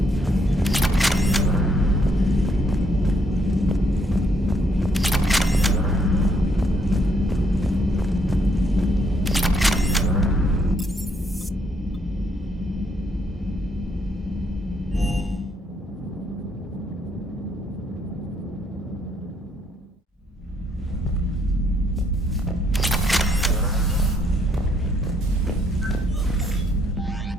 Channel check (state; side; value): normal; both; correlation 0.71